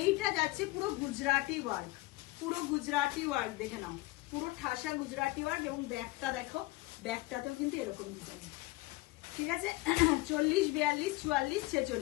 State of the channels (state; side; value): quieter; right; 21.0 dB